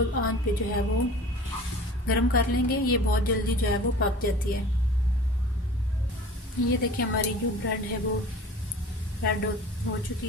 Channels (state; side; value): normal; both; correlation 0.42